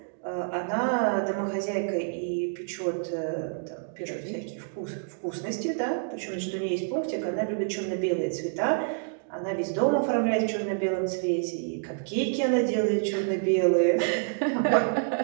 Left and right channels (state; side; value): silent; left; digital silence